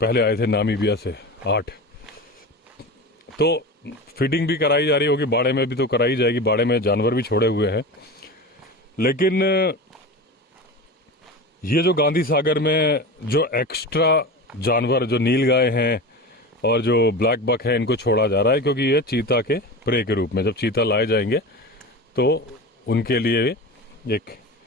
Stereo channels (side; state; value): both; normal; correlation 0.29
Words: आए थे नामीबिया से 8। तो फीडिंग भी कराई जा रही होगी, बाड़े में भी तो कराई जाएगी, बाड़े में जानवर भी छोड़े हुए हैं। लेकिन ये जो गांधी सागर में जो एक्स्ट्रा जानवर, जो नीलगाय हैं और जो ब्लैक बक है, इनको छोड़ा जा रहा है, क्योंकि ये चीता के प्रे के रूप में जब चीता लाए जाएंगे तो उनके लिए एक